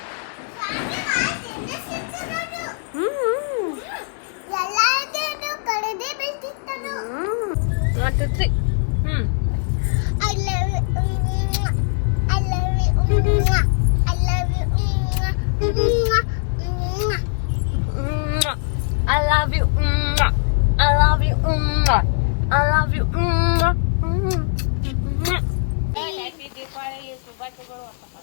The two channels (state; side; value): silent; right; digital silence